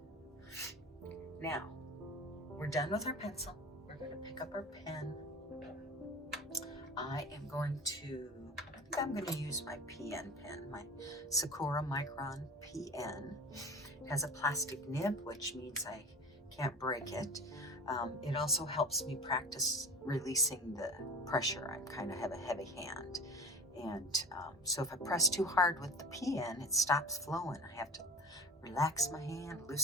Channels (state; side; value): normal; both; correlation 0.35